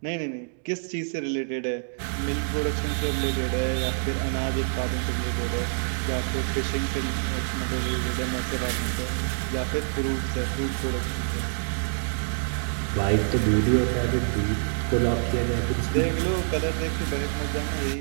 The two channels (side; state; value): left; silent; digital silence